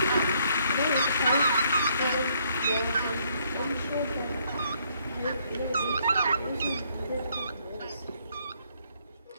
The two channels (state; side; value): inverted; both; correlation -0.69